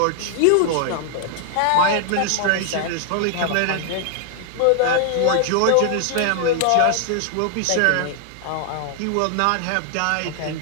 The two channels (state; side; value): different; both; correlation 0.00